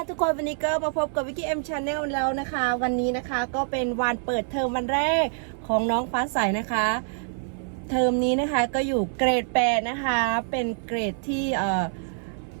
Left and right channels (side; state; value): left; silent; 61 dB below the other